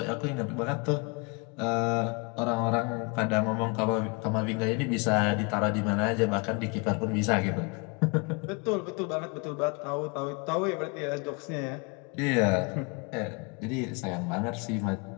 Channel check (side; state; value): right; quieter; 31.6 dB